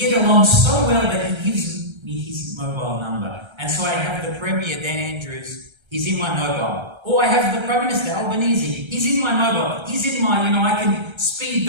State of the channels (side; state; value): left; late; 1.3 ms